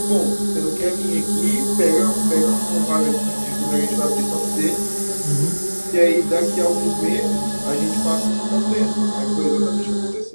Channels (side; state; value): both; inverted; correlation -1.00